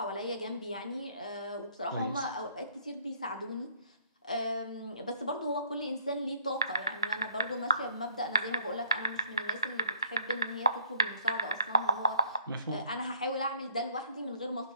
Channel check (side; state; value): both; inverted; correlation -0.62